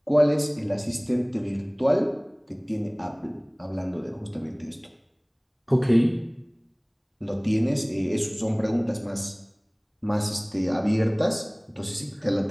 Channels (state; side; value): identical; both; correlation 1.00